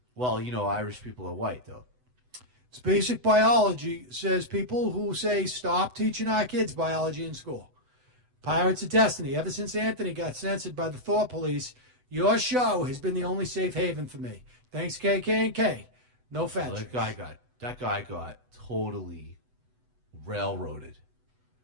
Well, Irish people are white, though. It's basic biology, says people who say stop teaching our kids biology in school. Pirates of Destiny. Ever since Anthony got censored by the Thought Police, your show has been the only safe haven for me. Thanks, KK&K. No fat Well, that guy got totally railroaded.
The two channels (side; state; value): left; late; 8.0 ms